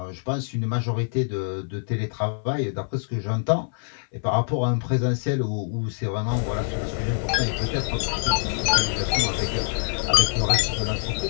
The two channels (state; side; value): silent; right; 62 dB below the other